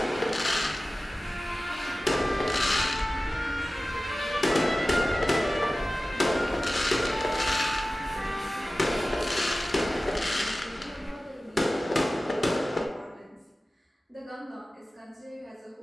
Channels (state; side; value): normal; both; correlation 0.96